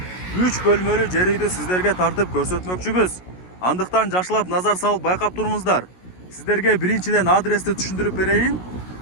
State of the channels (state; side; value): late; right; 16 ms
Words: 3 бөлмөлүү жер үйдү сиздерге тартып көрсөтмөкчүбүз. Андыктан жакшылап назар салып байкап туруңуздар. Сиздерге биринчиден адрести түшүндүрүп берейин.